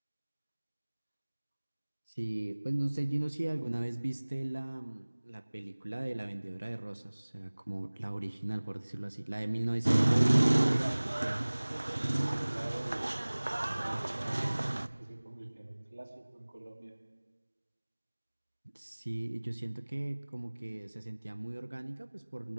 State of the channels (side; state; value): both; inverted; correlation -1.00